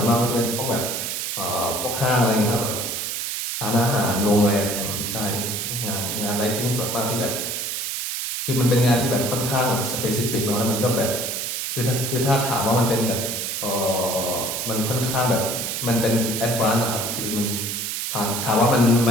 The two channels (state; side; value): noise; right; hiss, 3 dB below the sound